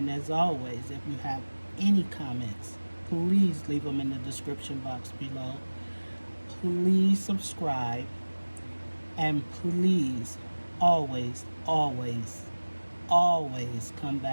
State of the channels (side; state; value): both; inverted; correlation -1.00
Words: as always, if you have any comments, please leave them in the description box below. Please subscribe, and please always come